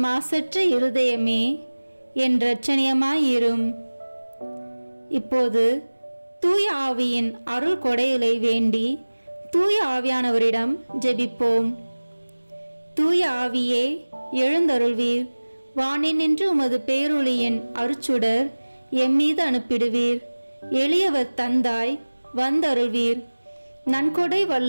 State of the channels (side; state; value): both; inverted; correlation -1.00